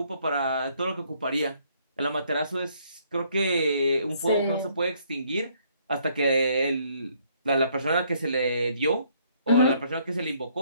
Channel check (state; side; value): inverted; both; correlation -0.66